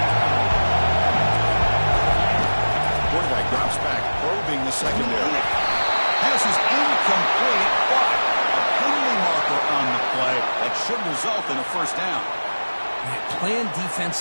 Quarterback drops back, probing the secondary. Pass is incomplete, but a penalty marker on the play that should result in a 1st down. Man, playing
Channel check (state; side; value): inverted; both; correlation -1.00